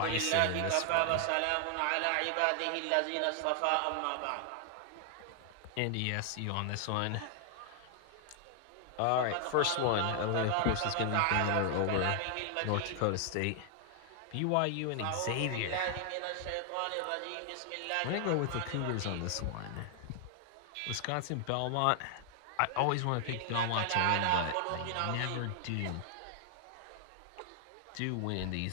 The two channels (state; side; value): different; both; correlation 0.00